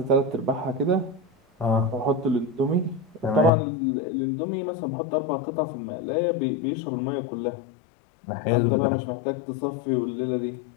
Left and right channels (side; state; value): right; drops out; at 3.5 s